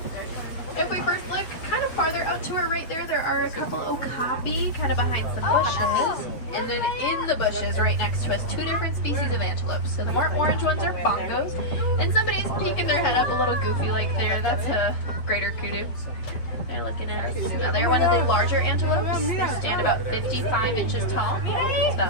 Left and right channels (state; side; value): late; right; 7.8 ms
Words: If we first look kind of farther out to our right there are a couple okapi kind of behind some bushes. And then in the bushes right next to us, two different species of antelopes. So the more orange ones are bongos. And somebody's peeking their head up a little goofy like there. That's a greater kudu. They're looking at us. Now they're one of the larger antelopes. They stand about 55 inches tall. It's